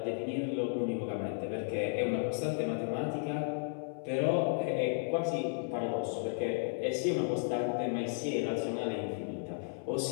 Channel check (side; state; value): right; silent; 55 dB below the other